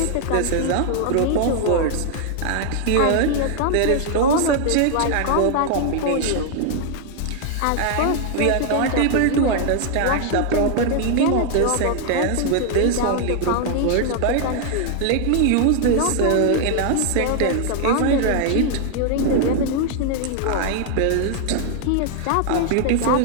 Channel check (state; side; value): different; both; correlation 0.00